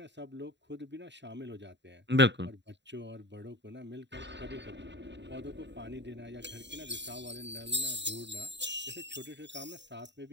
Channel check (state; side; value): late; left; 0.52 ms